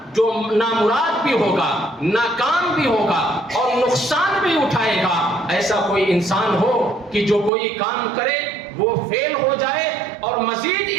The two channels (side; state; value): left; drops out; at 7.5 s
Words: جو نامراد بھی ہوگا، ناکام بھی ہوگا اور نقصان بھی اٹھائے گا، ایسا کوئی انسان ہو کہ جو کوئی کام کرے وہ فیل ہو جائے اور مزید